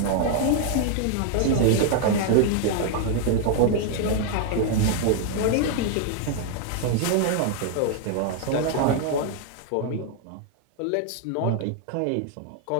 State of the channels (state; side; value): different; both; correlation 0.00